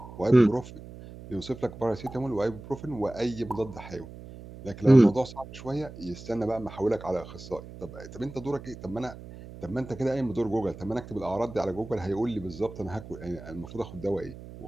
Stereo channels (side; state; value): right; noise; hum, 15 dB below the sound